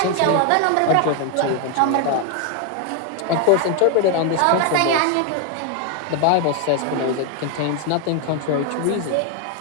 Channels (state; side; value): different; both; correlation 0.01